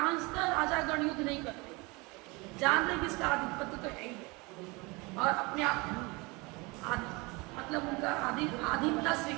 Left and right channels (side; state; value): left; quieter; 26.1 dB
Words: राजा गण युद्ध नहीं करते, जान रहे किसका आधिपत्य तो है ही, और अपने आप मतलब उनका आधीनता